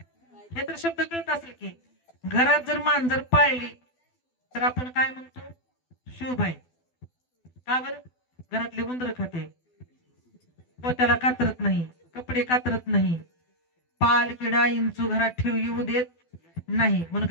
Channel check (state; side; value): late; right; 12 ms